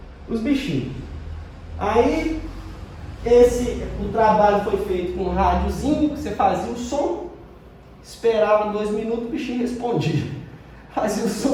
os bichinhos. Aí o trabalho foi feito com um rádiozinho, que você fazia o som, esperava 2 minutos, o bichinho respondia. Fazia o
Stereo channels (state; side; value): identical; both; correlation 1.00